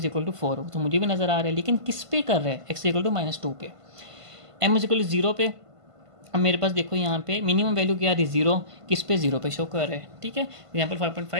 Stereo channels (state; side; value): late; left; 1.5 ms